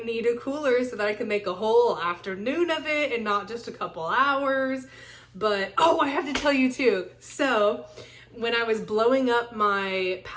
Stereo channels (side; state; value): both; identical; correlation 1.00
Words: a cooler so that I can make a whole afternoon of it and not just a couple hours. But, oh, I have to tell you too. So when I was blowing up my